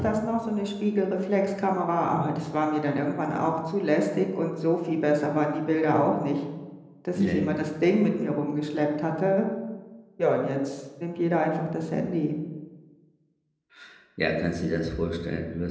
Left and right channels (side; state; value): both; identical; correlation 1.00